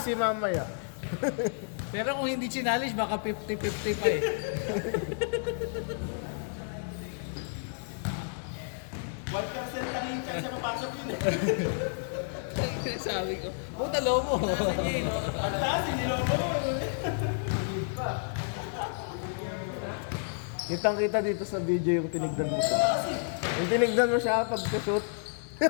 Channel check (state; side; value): silent; right; digital silence